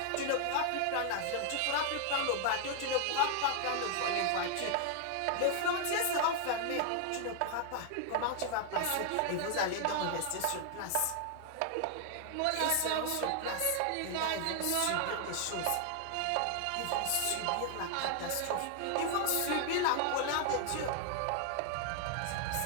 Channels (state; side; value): different; both; correlation 0.00